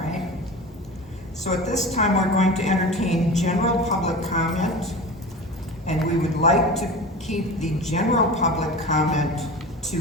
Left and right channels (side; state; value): both; normal; correlation 0.32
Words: So at this time, we're going to entertain general public comment, and we would like to keep the general public comment to